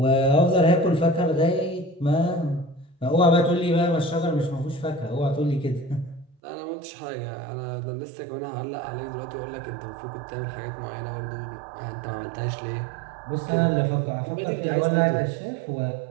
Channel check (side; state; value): left; drops out; at 6.4 s